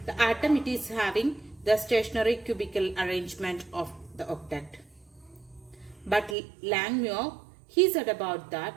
the atom it is having the stationary cubical arrangement of the octet. But Langmuir, he said about that,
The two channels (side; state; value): left; drops out; at 6.4 s